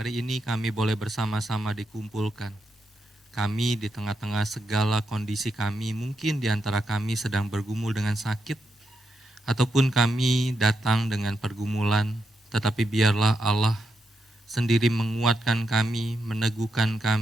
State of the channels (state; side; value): normal; both; correlation 0.83